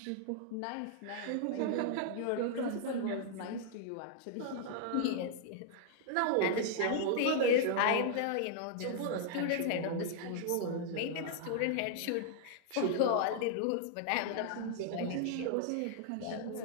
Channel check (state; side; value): different; both; correlation -0.01